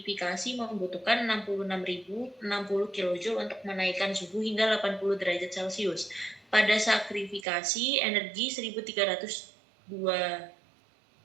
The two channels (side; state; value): left; drops out; at 7.5 s